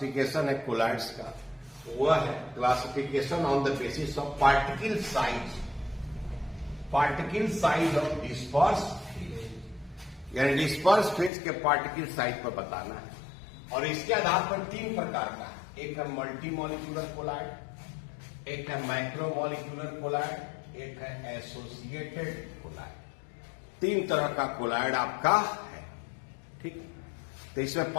है कोलॉइड्स का, वह है classification on the basis of particle size, particle size of disperse, यानी डिस्पर्स फेज के पार्टिकल साइज पर बताना है। और इसके आधार पर तीन प्रकार का है, एक है मल्टी मॉलिक्यूलर कोलॉइड, एक है माइक्रोमॉलिक्यूलर कोलॉइड, एक है एसोसिएटेड कोलॉइड। तीन तरह का कोलॉइड आपका है, ठीक। तो इसमें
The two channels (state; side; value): drops out; right; at 11.3 s